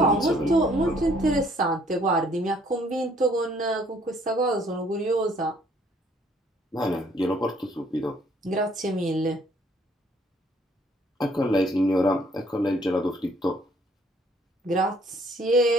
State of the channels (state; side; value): normal; both; correlation 0.63